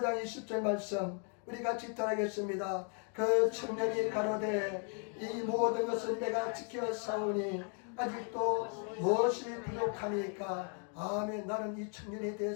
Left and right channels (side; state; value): right; quieter; 38.9 dB